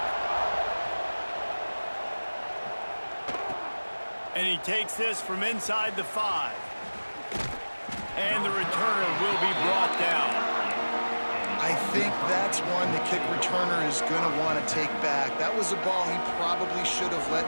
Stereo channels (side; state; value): both; inverted; correlation -1.00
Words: And he takes this from inside the 5. And the returner will be brought down. I think that's one the kick returner is going to want to take back. That was a ball he probably should have let